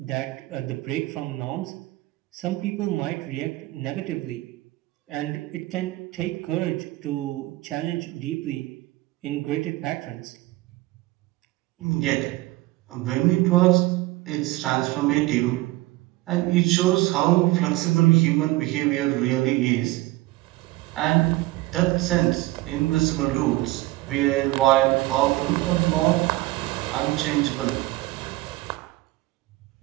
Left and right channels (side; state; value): left; quieter; 19.1 dB